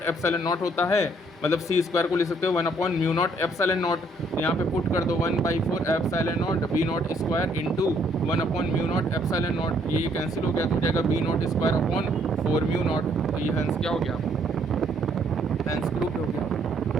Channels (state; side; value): normal; both; correlation 0.67